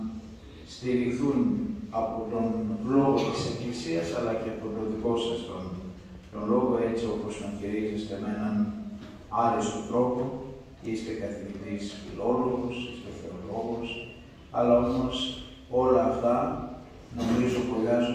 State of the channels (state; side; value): identical; both; correlation 1.00